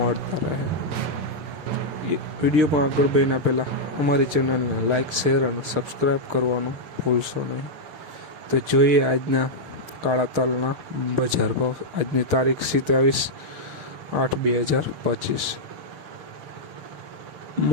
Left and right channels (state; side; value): late; left; 6.6 ms